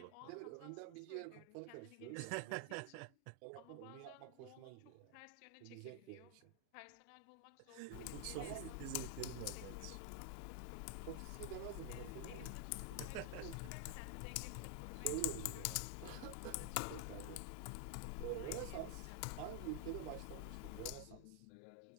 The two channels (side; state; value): both; different; correlation 0.00